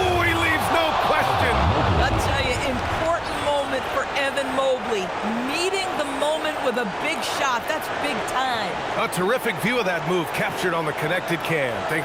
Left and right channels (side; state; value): both; identical; correlation 1.00